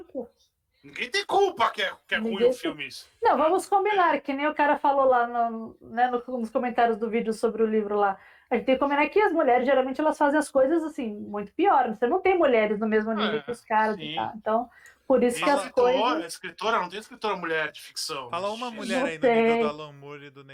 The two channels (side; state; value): both; identical; correlation 1.00